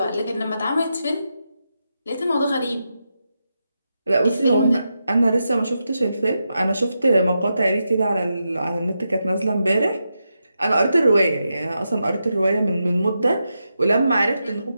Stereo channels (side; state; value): both; inverted; correlation -0.87